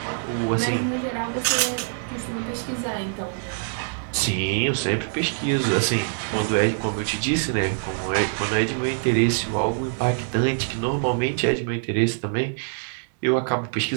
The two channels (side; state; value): left; silent; digital silence